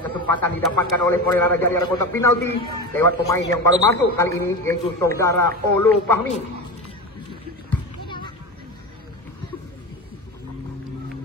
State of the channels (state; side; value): normal; both; correlation 0.24